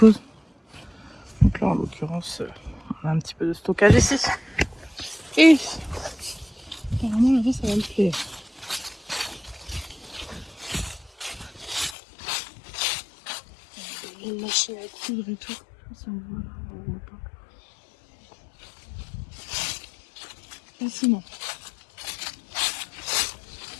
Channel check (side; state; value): right; drops out; at 12.0 s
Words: Donc là, en l'occurrence, on a un petit peu de stockage ici. Et apparemment, là-bas, ça va me plaire. Une machine à coudre et tout. Je sais pas si on voit pas. Fascinant.